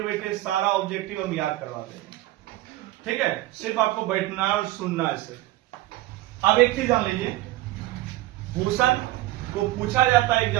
बैठे सारा ऑब्जेक्टिव हम याद करवा देंगे। ठीक है, सिर्फ आपको बैठना और सुनना है सिर्फ। अब एक चीज जान लीजिए, भूषण को पूछा जाता है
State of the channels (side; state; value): left; quieter; 17.0 dB